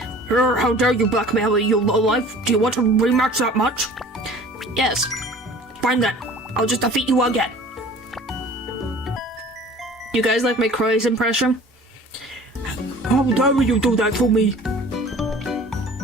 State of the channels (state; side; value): normal; both; correlation 0.46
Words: How dare you blackmail me, you lowlife? Do you want to rematch that much? Yes. Fine then. I'll just defeat you again. You guys like my Crois impression? How dare you do that to me?